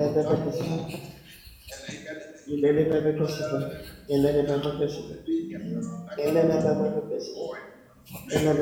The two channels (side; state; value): both; identical; correlation 1.00